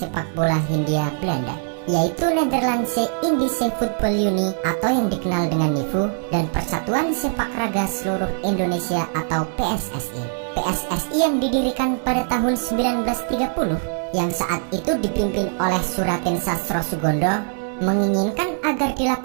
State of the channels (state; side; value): silent; left; 63 dB below the other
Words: bola Hindia Belanda, yaitu Nederlandse Indische Voetbal Unie atau yang dikenal dengan NIVU dan Persatuan Sepak Raga Seluruh Indonesia atau PSSI. PSSI yang didirikan pada tahun 1930 yang saat itu dipimpin oleh Suratin Sastro Sugondo menginginkan agar